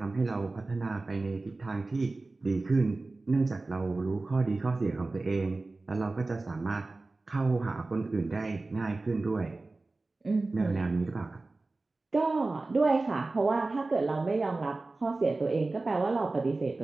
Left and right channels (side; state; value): left; quieter; 3.3 dB